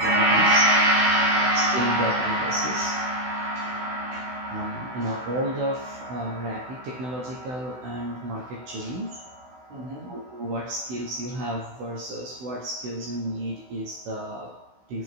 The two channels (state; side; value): late; left; 16 ms